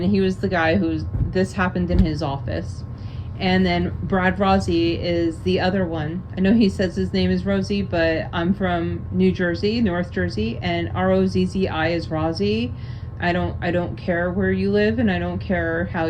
he was the guy this happened in his office. And then Brad Rossi is the other one. I know he says his name is Rosie, but I'm from New Jersey, North Jersey, and Rozzi is Rossi. I don't care where you live, and I don't care how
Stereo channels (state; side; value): identical; both; correlation 1.00